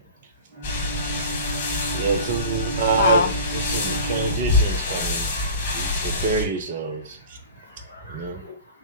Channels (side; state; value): both; inverted; correlation -0.38